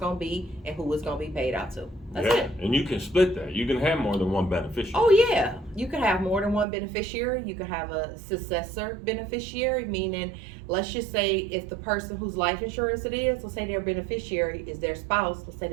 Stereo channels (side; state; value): left; drops out; at 6.7 s